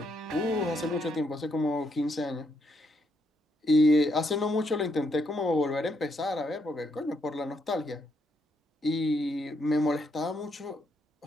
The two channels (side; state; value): both; normal; correlation 0.76